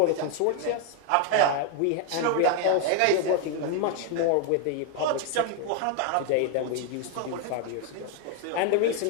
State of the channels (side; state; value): both; different; correlation 0.01